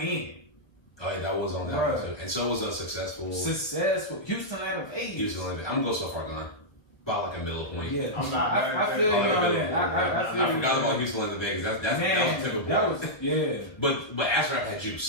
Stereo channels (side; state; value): right; late; 1.1 ms